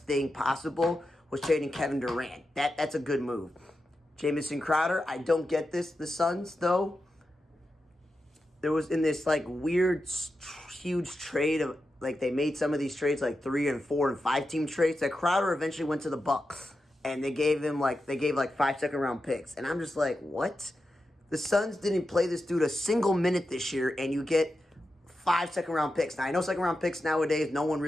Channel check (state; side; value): normal; both; correlation 0.90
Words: thing possible was trading Kevin Durant. That's a good move. Jamison Crowder, I don't get this. The Suns, though, there was in this weird, huge trade of they made some of these trades 3 and 4 and 5 team trades that Crowder eventually went to the Bucks and they gave him 5 second-round picks. And I'm just like, what? The Suns didn't play this dude a single minute this year, and you get 5 second-round picks. Now, I know second-round picks nowadays, no one